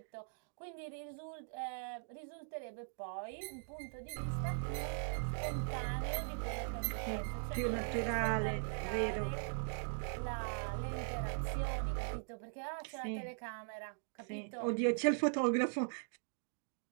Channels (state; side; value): silent; left; digital silence